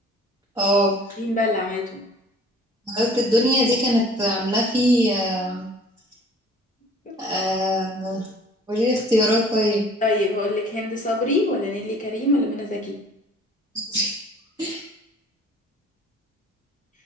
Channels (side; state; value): both; normal; correlation 0.51